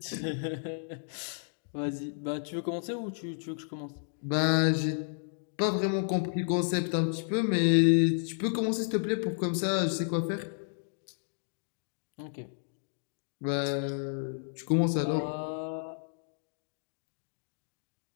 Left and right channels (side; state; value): right; silent; digital silence